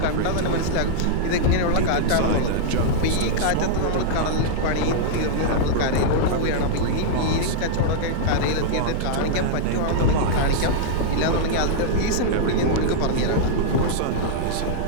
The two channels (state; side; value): different; both; correlation -0.02